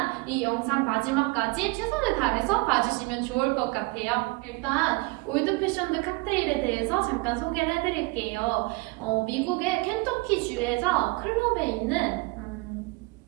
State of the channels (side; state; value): left; quieter; 24.9 dB